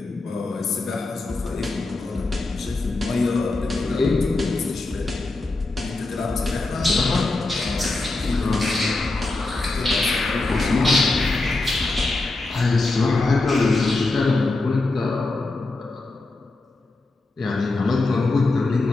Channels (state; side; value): quieter; right; 3.2 dB